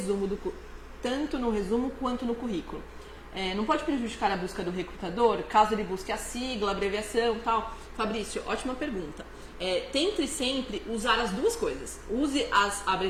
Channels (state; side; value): identical; both; correlation 1.00